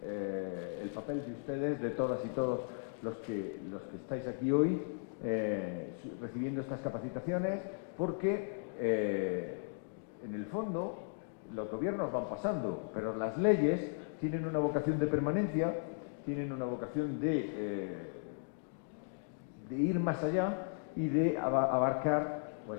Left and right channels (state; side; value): silent; right; digital silence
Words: el papel de ustedes, de todas y todos los que estáis aquí hoy recibiendo estas capacitaciones, porque en el fondo los gobiernos van pasando, pero las leyes tienen una vocación de permanencia, tienen una vocación de ir más allá y de abarcar